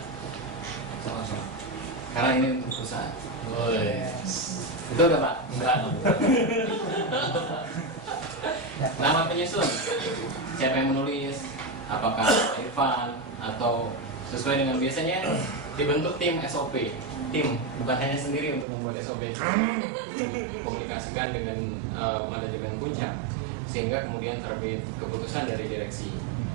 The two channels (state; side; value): drops out; left; at 18.7 s